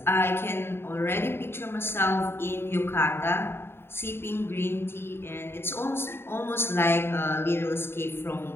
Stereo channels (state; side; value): late; right; 0.11 ms